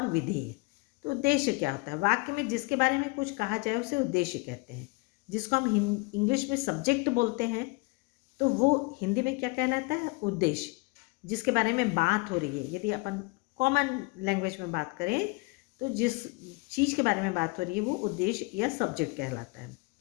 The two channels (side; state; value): right; quieter; 27.3 dB